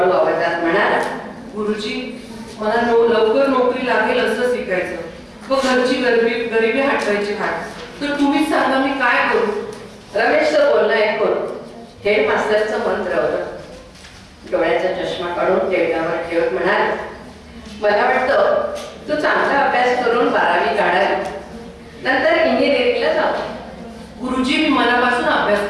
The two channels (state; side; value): identical; both; correlation 1.00